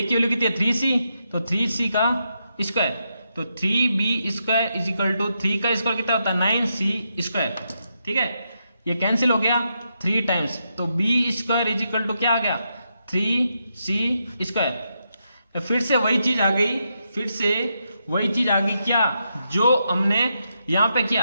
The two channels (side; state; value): both; inverted; correlation -0.83